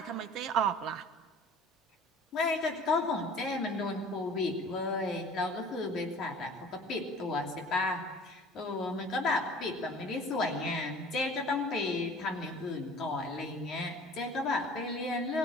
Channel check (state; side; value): normal; both; correlation 0.46